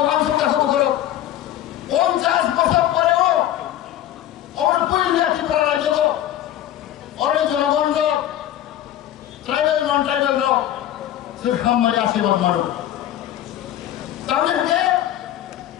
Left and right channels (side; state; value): right; quieter; 12.3 dB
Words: ওয়াংশ কাকু করো 50 বছর পরেও আমার পইলিয়া ত্রিপুরা রাজ্য অরে জনগণ ট্রাইবেল নন ট্রাইবেল সে খামারি আশীর্বাদ মানো তাহলে